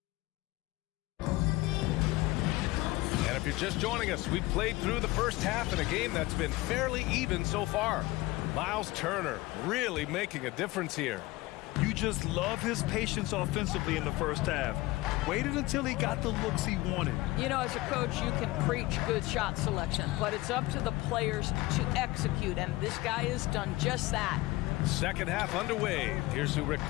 And if you're just joining us, we've played through the first half in a game that's been fairly even so far. Miles Turner really making a difference here. You just love his patience offensively in the first half. Waited until he got the looks he wanted. You know, as a coach, you can preach good shot selection, but it's up to the players to execute, and this guy has done just that. Second half underway. Here's who Rick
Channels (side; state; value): right; quieter; 19.9 dB